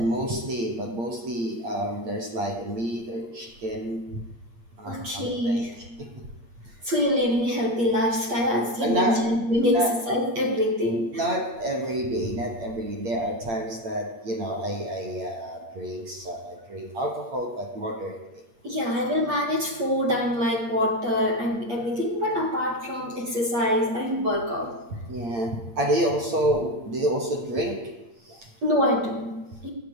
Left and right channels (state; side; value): late; left; 8.6 ms